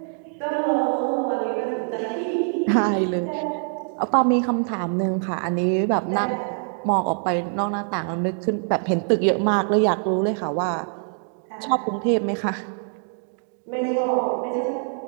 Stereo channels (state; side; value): silent; left; 58 dB below the other